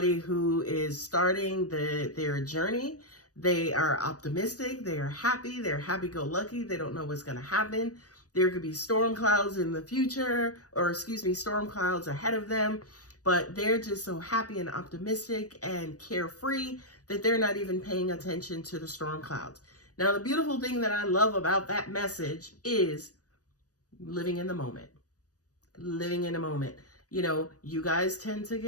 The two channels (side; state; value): right; late; 0.67 ms